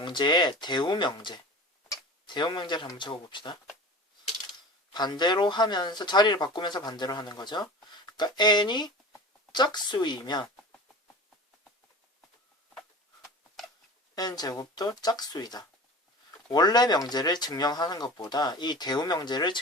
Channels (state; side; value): normal; both; correlation 0.35